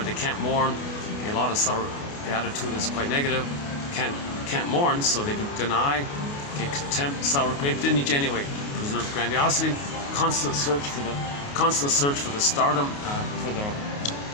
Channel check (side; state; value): right; late; 28 ms